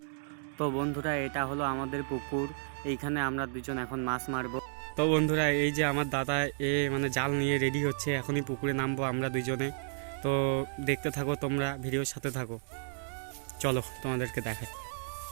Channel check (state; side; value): silent; left; digital silence